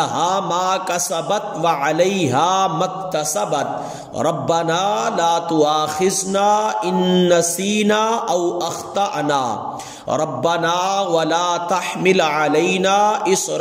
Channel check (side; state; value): both; identical; correlation 1.00